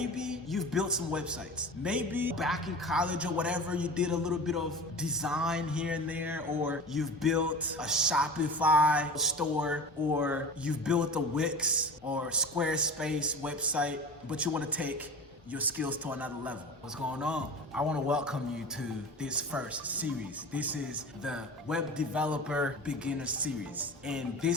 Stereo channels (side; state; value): both; normal; correlation 0.34